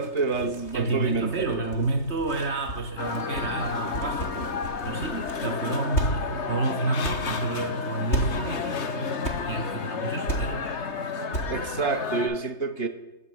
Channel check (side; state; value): right; late; 3.3 ms